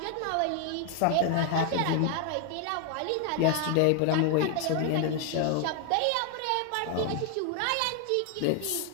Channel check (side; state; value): both; different; correlation 0.00